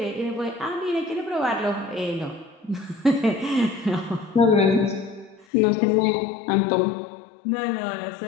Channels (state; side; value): drops out; right; at 5.5 s